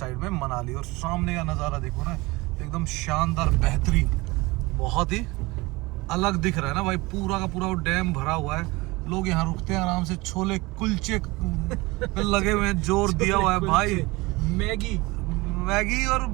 में मनाली। और सामने का नज़ारा देखो ना, एकदम शानदार बेहतरीन, बहुत ही अलग दिख रहा है ना भाई। पूरा का पूरा वो डैम भरा हुआ है, लोग यहाँ रुकते हैं आराम से, छोले कुलचे पे लगे हुए हैं, जोर दिया हुआ है भाई। मैगी और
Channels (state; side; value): quieter; left; 22.7 dB